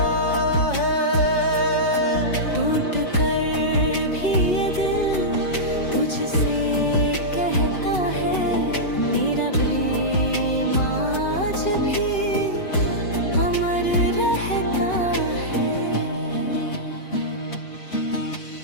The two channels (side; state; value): right; late; 5.4 ms